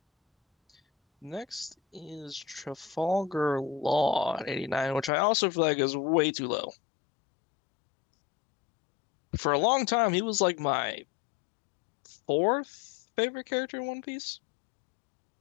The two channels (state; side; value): drops out; right; at 5.1 s